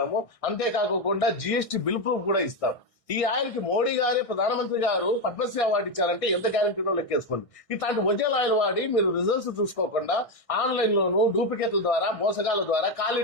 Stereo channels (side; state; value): right; late; 1.6 ms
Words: అంతేకాకుండా GST బిల్ ప్రూఫ్ కూడా ఇస్తాం. ఈ ఆయిల్ కి మోడీ గారే, ప్రధానమంత్రి గారు పద్మశ్రీ అవార్డు ఇచ్చారంటే ఎంత గ్యారంటీనో లెక్కేసుకోండి. ఇట్లాంటి ఒరిజినల్ ఆయిల్ వాడి మీరు రిజల్ట్స్ చూసుకోకుండా ఆన్లైన్ లోను డూప్లికేట్ల ద్వారా, మోసగాల ద్వారా